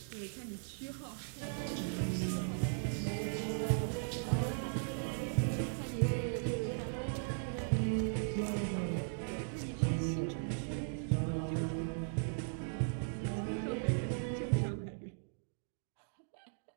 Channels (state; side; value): silent; left; digital silence